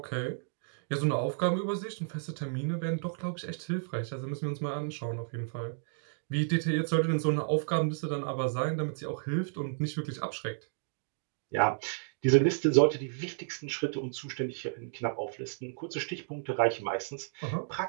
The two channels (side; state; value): left; silent; digital silence